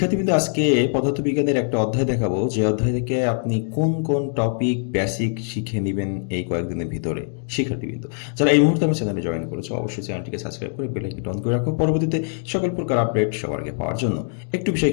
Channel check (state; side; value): silent; right; 55 dB below the other